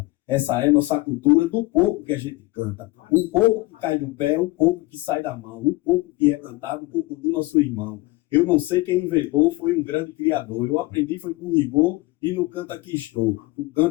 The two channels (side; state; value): right; quieter; 21.4 dB